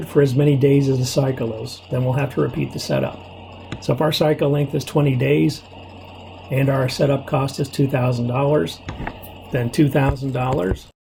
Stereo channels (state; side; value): identical; both; correlation 1.00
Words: for as many days as the cycle is. Then we'll have to repeat the setup. So if our cycle length is 20 days and our setup cost is $2,000, then $2,000 is